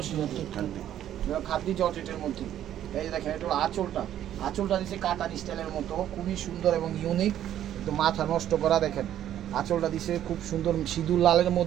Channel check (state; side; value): quieter; left; 11.3 dB